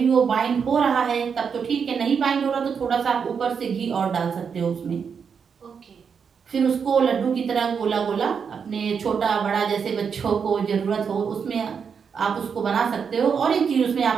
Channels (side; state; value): left; quieter; 6.5 dB